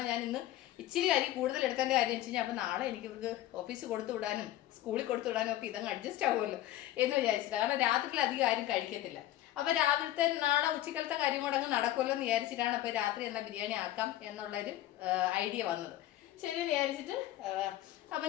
ഞാൻ ഇന്ന് ഇച്ചിരി അരി കൂടുതൽ എടുക്കേണ്ട കാര്യം വെച്ച് കഴിഞ്ഞാൽ അപ്പോൾ നാളെ എനിക്ക് ഇവർക്ക് ഓഫീസിൽ കൊടുത്തു വിടാനും സ്കൂളിൽ കൊടുത്തു വിടാനും ഒക്കെ ഇതങ്ങ് അഡ്ജസ്റ്റ് ആവുമല്ലോ എന്ന് വിചാരിച്ചിട്ട്. കാരണം രാത്രിയിൽ അധികം ആരും കഴിക്കത്തില്ല. അപ്പോൾ രാവിലത്തെ നാളെ ഉച്ചക്കലത്തെ കാര്യം കൂടെ അങ്ങ് നടക്കുമല്ലോ എന്ന് വിചാരിച്ചിട്ടാണ് അപ്പോൾ രാത്രി എന്നാൽ ബിരിയാണി ആക്കാം എന്നുള്ളൊരു ഐഡിയ വന്നത്. ശരി വിചാരിച്ചിട്ട്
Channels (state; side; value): quieter; right; 14.2 dB